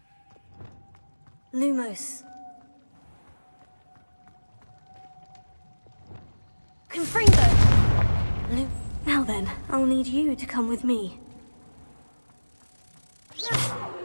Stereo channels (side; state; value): both; inverted; correlation -1.00